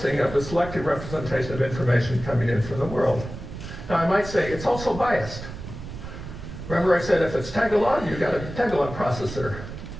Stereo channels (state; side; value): noise; right; rumble, 10 dB below the sound